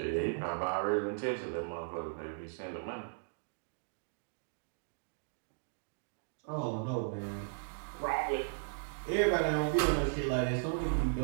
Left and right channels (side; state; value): left; silent; digital silence